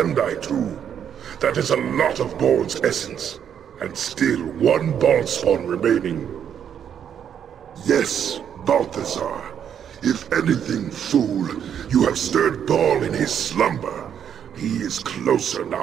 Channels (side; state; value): left; quieter; 8.6 dB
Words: too. That is a lot of Bhaal's essence, and still 1 Bhaalspawn remaining. Yes, Balthazar. If anything, fool, you have stirred Bhaal in his slumber. He is closer